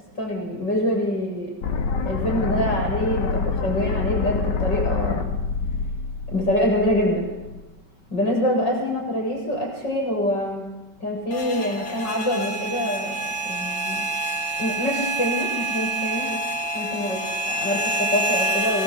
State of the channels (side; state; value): right; late; 5.3 ms